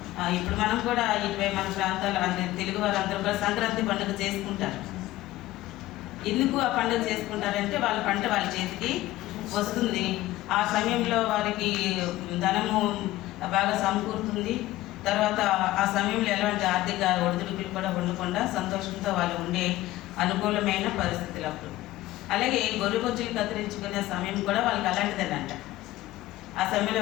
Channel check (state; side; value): quieter; right; 16.4 dB